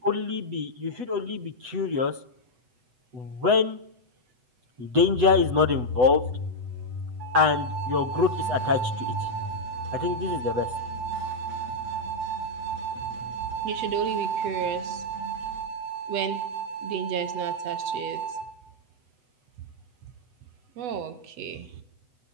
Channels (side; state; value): left; late; 8.0 ms